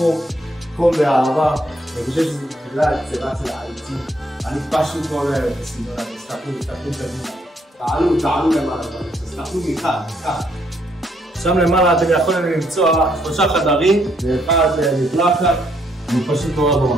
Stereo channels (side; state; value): both; normal; correlation 0.71